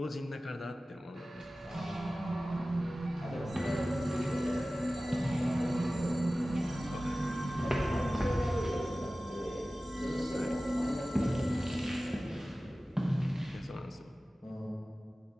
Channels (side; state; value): both; normal; correlation 0.96